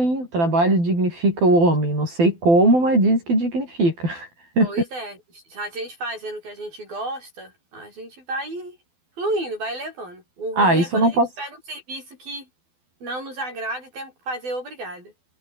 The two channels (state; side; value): late; left; 12 ms